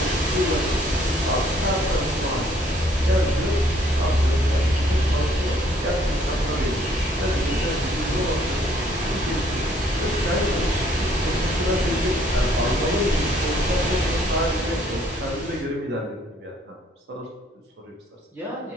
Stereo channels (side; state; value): both; normal; correlation 0.64